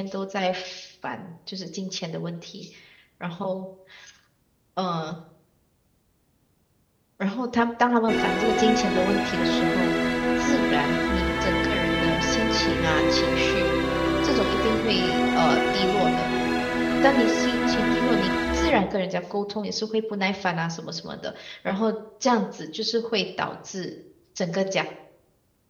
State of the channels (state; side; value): identical; both; correlation 1.00